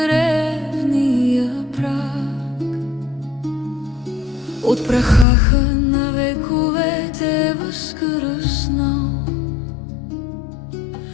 праг. От праха на вековете възкръснал,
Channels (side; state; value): right; drops out; at 5.2 s